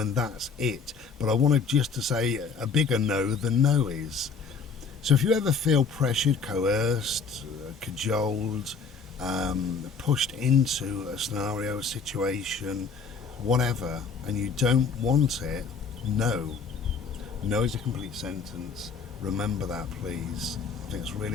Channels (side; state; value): right; quieter; 5.2 dB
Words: that's it. But I wanted just to say a bigger no than no is. So if you ever feel pressured, coerced, cajoled, pushed into a scenario, a situation, whatever, and you don't want it, no. No is a complete sentence. Remember that, please. I think it's